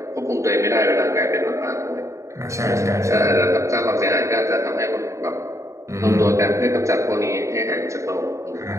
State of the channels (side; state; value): left; late; 0.14 ms